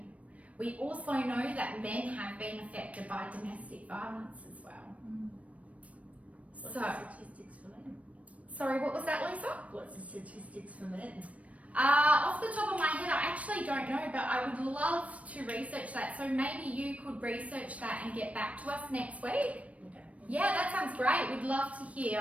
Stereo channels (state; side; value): late; left; 0.066 ms